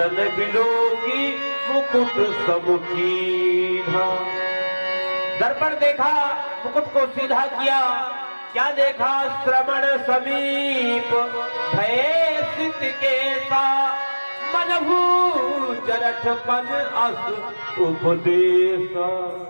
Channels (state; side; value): inverted; both; correlation -1.00